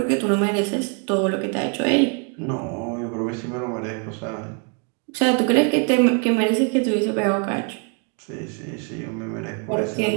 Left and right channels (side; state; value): left; quieter; 37.8 dB